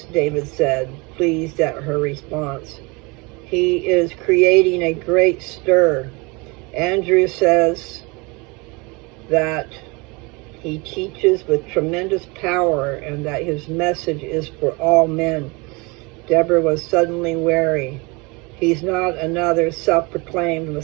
David said, pleased at her response. He is creating a great stir. Andrew says that he teaches with tremendous power and that his message is for all men. Deborah was suddenly wary. He's not another self-proclaimed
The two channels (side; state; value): left; quieter; 27.3 dB